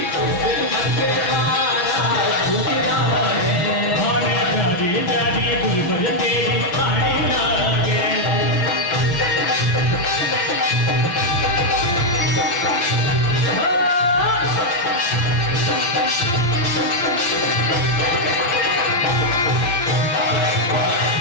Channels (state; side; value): late; right; 5.9 ms